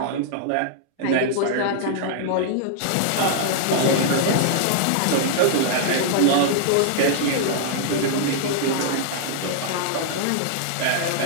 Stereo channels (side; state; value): both; different; correlation -0.01